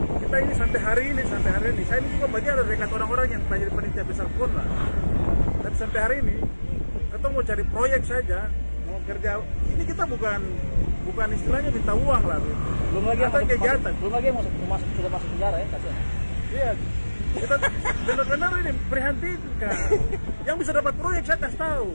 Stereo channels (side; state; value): both; inverted; correlation -1.00